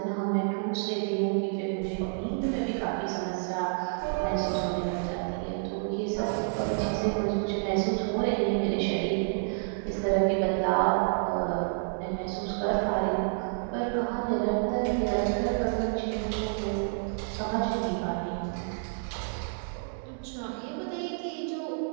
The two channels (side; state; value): left; silent; digital silence